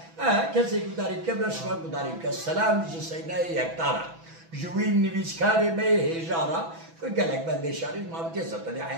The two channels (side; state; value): left; late; 6.0 ms